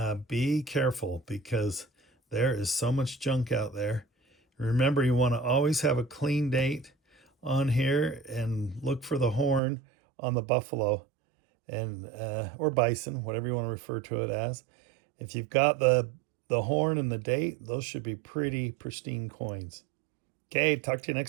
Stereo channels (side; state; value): left; drops out; at 9.6 s